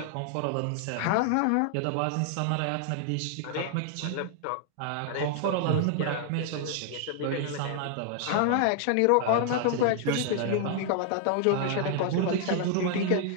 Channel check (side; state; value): both; different; correlation 0.00